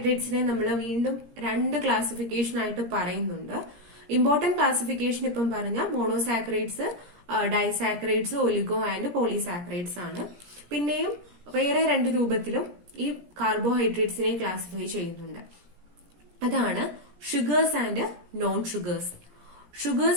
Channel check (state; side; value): late; left; 17 ms